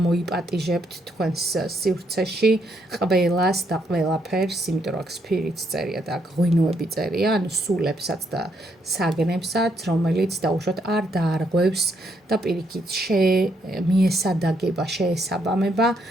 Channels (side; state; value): both; normal; correlation 0.75